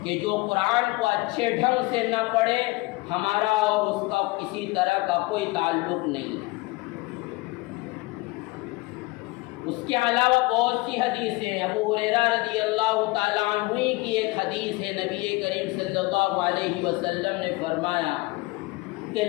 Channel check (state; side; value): quieter; right; 23.3 dB